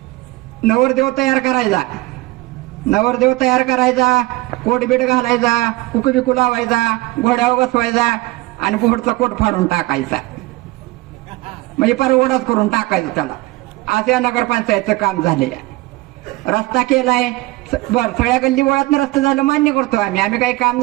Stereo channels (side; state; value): left; quieter; 20.1 dB